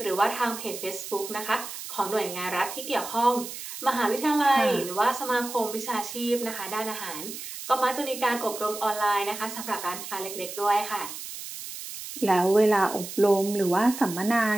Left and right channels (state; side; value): noise; right; hiss, 10 dB below the sound